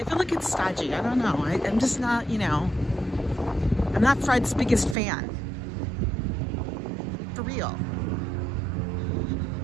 feel like it's stodgy. I don't know. I'm just not, I'm not Fred's biggest fan. For real.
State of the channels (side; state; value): left; drops out; at 5.0 s